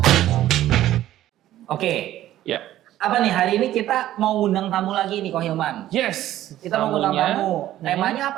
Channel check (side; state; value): left; quieter; 13.5 dB